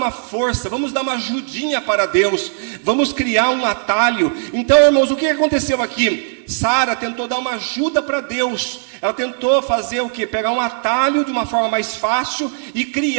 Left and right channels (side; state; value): left; silent; digital silence